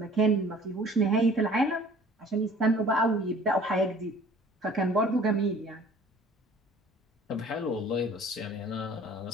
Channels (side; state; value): both; normal; correlation 0.49